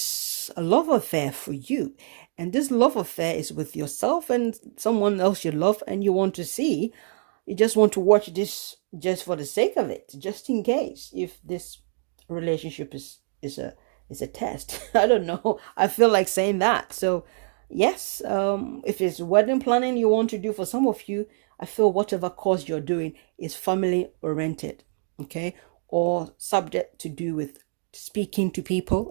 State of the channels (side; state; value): left; silent; 58 dB below the other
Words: a love affair for you, and this love affair is with yourself and someone else you love, and you just want to watch this just for the sake of it, just in case if this relationship is a test. I don't know, I feel like saying that. So yes, if it's wedding planning you want to do, for some of you, I feel whatever course you're doing is family oriented, okay, or subject to do with speaking to people